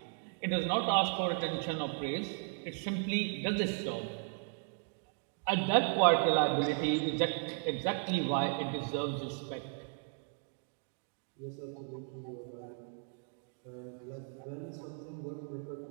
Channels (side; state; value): left; silent; 54 dB below the other